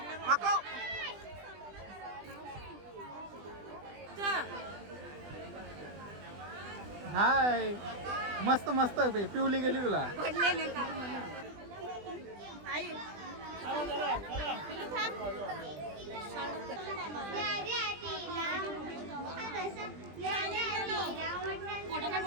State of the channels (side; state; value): left; late; 20 ms